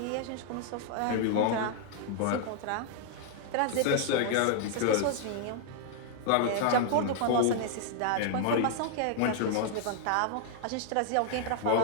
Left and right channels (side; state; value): both; different; correlation 0.00